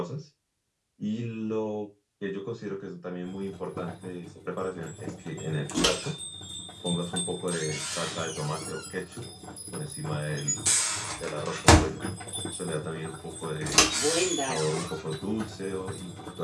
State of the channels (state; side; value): identical; both; correlation 1.00